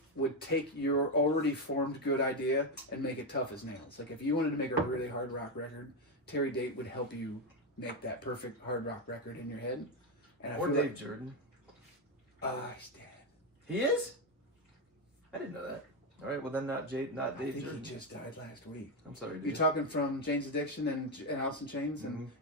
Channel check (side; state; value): both; normal; correlation 0.08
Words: would take your already formed good idea and make it tough as nails. Like if you wanted to make a really hard rock record, Terry Date would help you make that perfect hard rock record in your head. And I Or feel Dave like, Jordan. he's dead. He is? I didn't know that. All right, well then not I Dave think Jordan. he just died last week. I'm sorry, dude. You're talking from Jane's Addiction and Alice in Chains, and